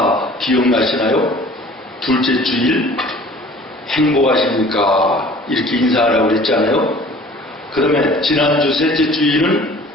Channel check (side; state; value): both; normal; correlation 0.48